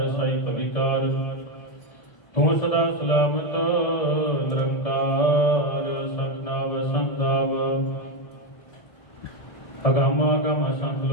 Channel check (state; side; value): late; right; 1.7 ms